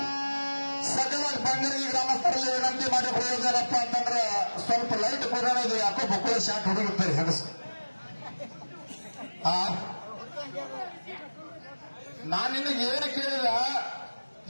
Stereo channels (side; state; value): both; inverted; correlation -1.00